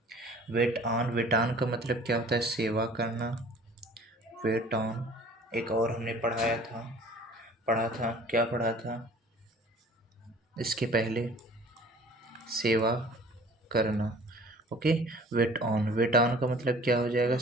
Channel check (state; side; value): normal; both; correlation 0.49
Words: वेट ऑन। वेट ऑन का मतलब क्या होता है? सेवा करना। Wait on. एक और हमने पढ़ा था, क्या पढ़ा था इसके पहले? सेवा करना। Okay, wait on. Wait on का मतलब क्या हो जाएगा?